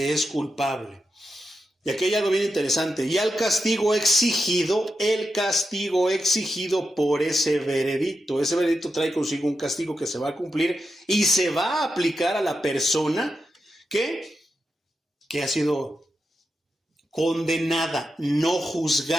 es culpable. Y aquí hay algo bien interesante. Y el castigo exigido por ese veredicto. Ese veredicto trae consigo un castigo que se va a cumplir y se va a aplicar a la persona que ha sido condenada, no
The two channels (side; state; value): both; normal; correlation 0.87